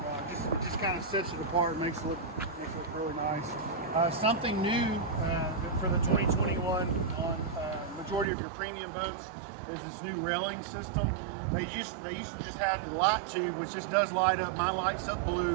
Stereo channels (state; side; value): drops out; left; at 8.2 s